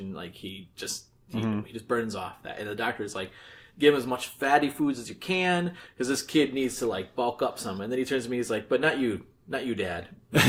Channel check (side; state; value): both; identical; correlation 1.00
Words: like he just burns off that. And the doctor's like, give him as much fatty foods as you can, because this kid needs to like bulk up some. And then he turns to me, he's like, but not you, Dad.